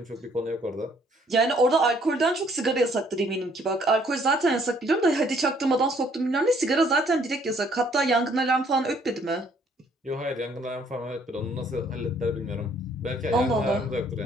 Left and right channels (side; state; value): both; normal; correlation 0.63